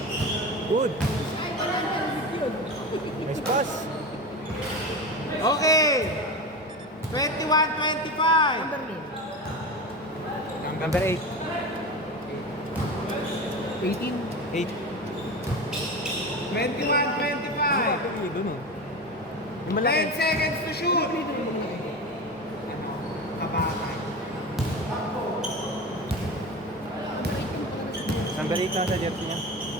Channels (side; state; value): both; normal; correlation 0.26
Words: Good. Nice pass. Okay. 21-25. Number name. Number 8. 18. 8. 21-25. Doon eh. Yung 10 malaki. seconds to shoot. Kabatay. Number 8 na sa jersey niya.